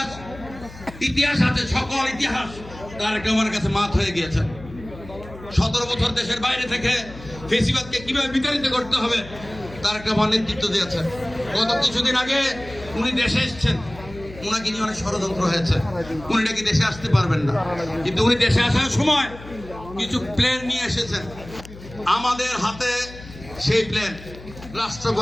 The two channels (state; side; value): noise; left; hum, 16 dB below the sound